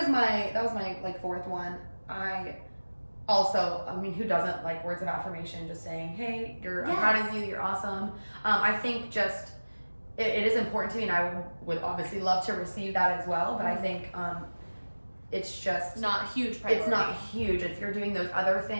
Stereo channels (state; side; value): inverted; both; correlation -1.00